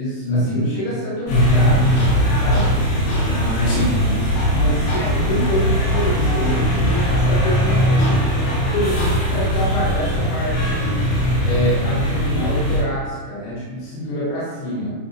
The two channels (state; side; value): late; right; 31 ms